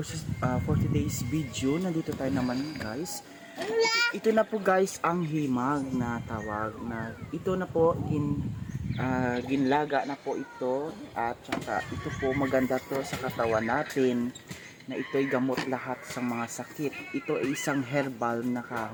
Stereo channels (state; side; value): identical; both; correlation 1.00